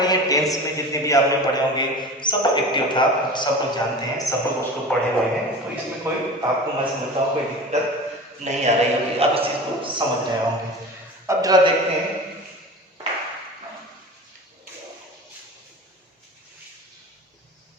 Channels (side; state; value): both; normal; correlation 0.34